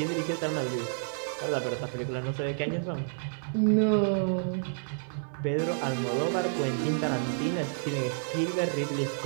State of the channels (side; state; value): left; silent; 57 dB below the other